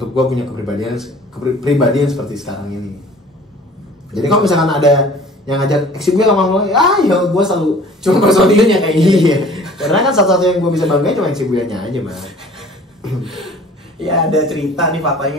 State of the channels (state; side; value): normal; both; correlation 0.48